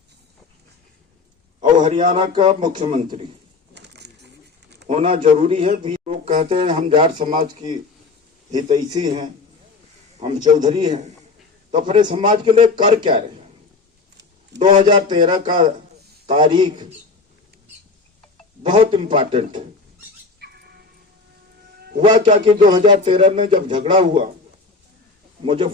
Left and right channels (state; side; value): quieter; right; 4.1 dB